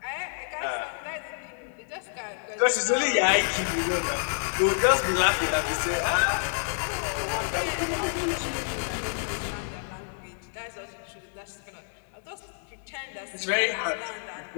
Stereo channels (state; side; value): silent; right; digital silence